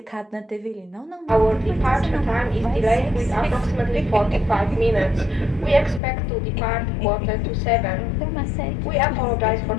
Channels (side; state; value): right; drops out; at 6.0 s